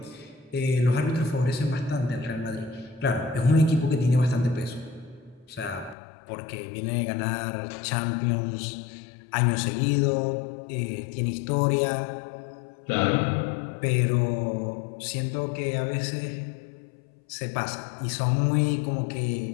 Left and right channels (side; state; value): right; drops out; at 6.0 s